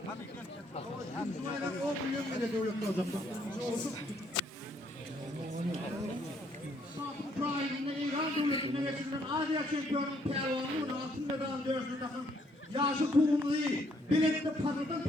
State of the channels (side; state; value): both; normal; correlation 0.69